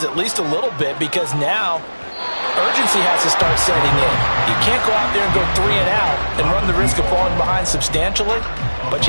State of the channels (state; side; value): inverted; both; correlation -1.00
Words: at least a little bit, because now urgency has to start setting in. You can't go out there and go 3 and out and run the risk of falling behind substantially, but